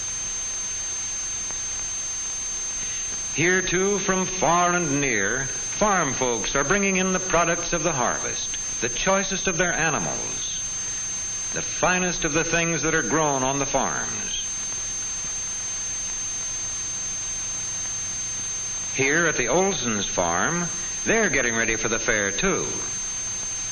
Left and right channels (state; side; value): identical; both; correlation 1.00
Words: Here, too, from far and near, farm folks are bringing in the products of the harvest, the choicest of their animals, the finest of the things that are grown on the farms. Here at the Olsons' farm, they're getting ready for the fair, too.